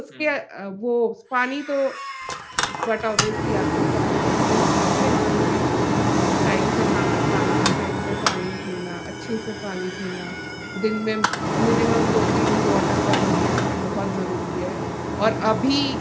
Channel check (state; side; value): identical; both; correlation 1.00